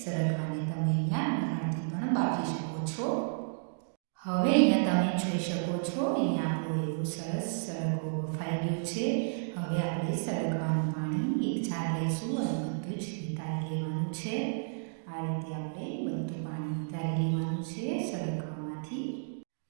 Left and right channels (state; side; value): silent; left; digital silence